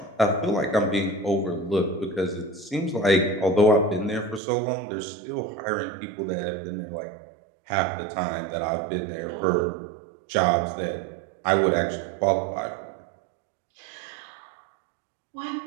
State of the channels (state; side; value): drops out; left; at 4.4 s